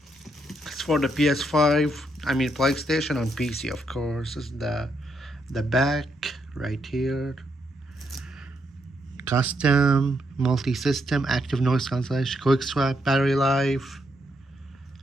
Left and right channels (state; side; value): normal; both; correlation 0.77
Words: It's for the PS5, PlayStation and PC, of course. This is the back right here. Custom, multi-system, active noise cancellation, quick swap, battery life.